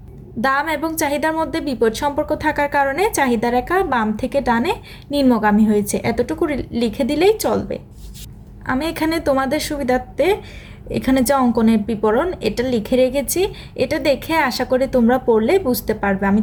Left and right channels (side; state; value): both; identical; correlation 1.00